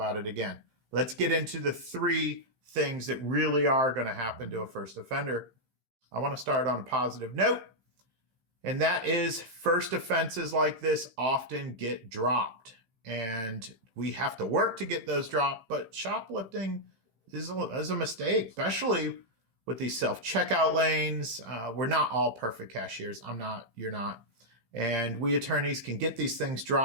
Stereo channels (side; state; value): left; late; 15 ms